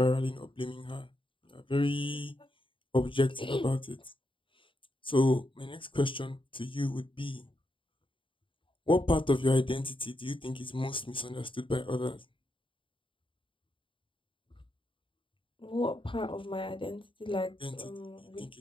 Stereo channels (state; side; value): late; right; 0.25 ms